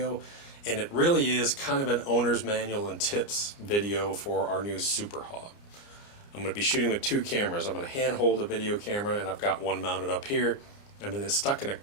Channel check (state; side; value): late; right; 29 ms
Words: and it really is kind of an owner's manual and tips video for our new Super Hog. I'm going to be shooting with two cameras. I'm going to hand hold a video camera, and I've got one mounted up here, and then it's stuck in a